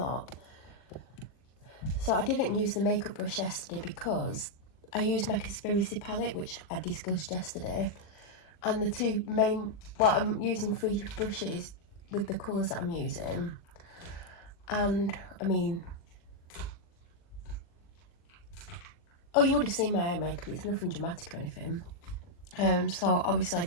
So I didn't use the makeup brush yesterday because I used my conspiracy palette, which I discussed yesterday. And the two main, well, I'm using 3 brushes with the colours that I'm using. And, I mean, oh, you would have seen my eye makeup. It's nothing dramatic or anything. So obviously I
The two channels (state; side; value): late; right; 40 ms